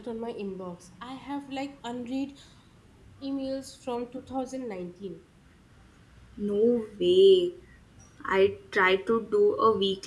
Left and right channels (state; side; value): identical; both; correlation 1.00